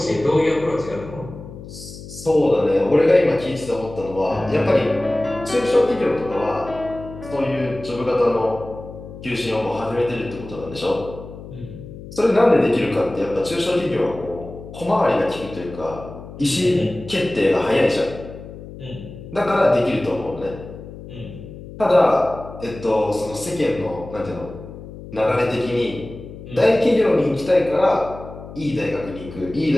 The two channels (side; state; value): left; noise; hum, 14 dB below the sound